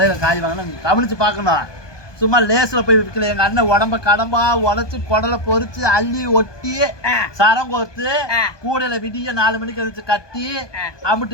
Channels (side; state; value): right; late; 1.2 ms